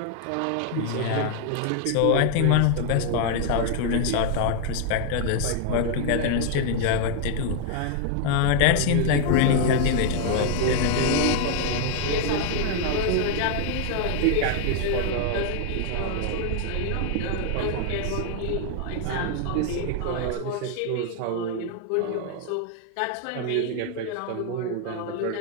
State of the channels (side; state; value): both; different; correlation 0.00